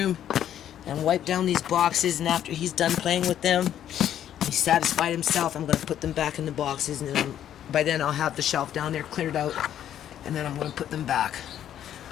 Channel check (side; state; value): right; quieter; 10.6 dB